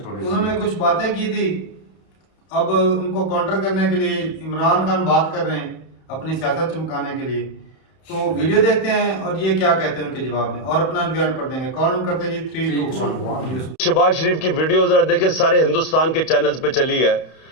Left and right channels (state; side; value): late; right; 31 ms